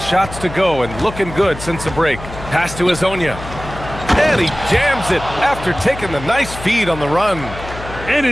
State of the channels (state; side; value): noise; left; hum, 12 dB below the sound